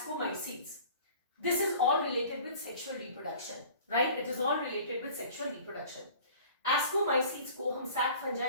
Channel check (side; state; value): both; inverted; correlation -0.46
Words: This is all related with sexual reproduction, right? It is all related with sexual reproduction. Ascomycetes को हम sac